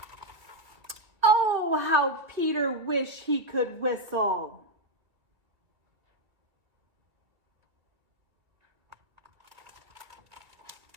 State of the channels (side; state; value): left; late; 2.0 ms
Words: Oh, how Peter wished he could whistle.